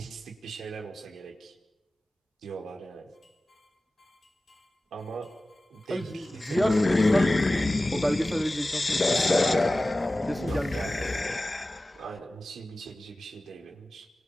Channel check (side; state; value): both; normal; correlation 0.96